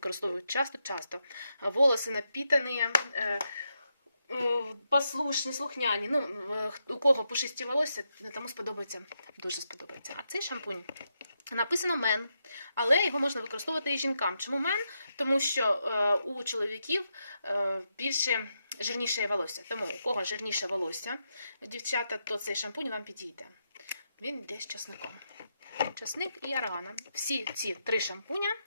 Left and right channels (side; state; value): both; inverted; correlation -0.83